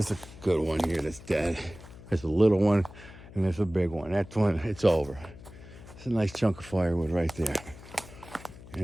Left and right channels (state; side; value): noise; left; hum, 18 dB below the sound